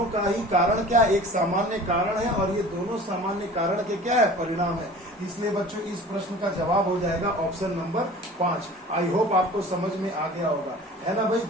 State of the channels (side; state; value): both; normal; correlation 0.42